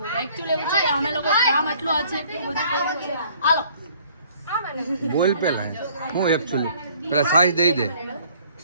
એકચ્યુઅલી એવું છે કે અમે લોકો કામ એટલું છે કે બધું કર્યું છે. હાલો બોલ પેલા હું એકચ્યુઅલી પેલા સાઈઝ દઈ દે.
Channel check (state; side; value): inverted; both; correlation -0.58